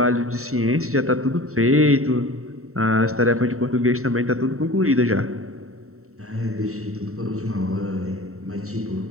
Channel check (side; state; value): left; late; 0.64 ms